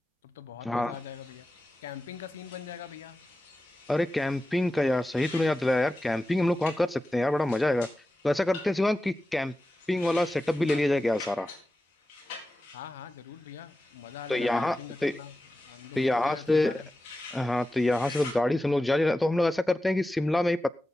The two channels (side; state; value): both; normal; correlation 0.93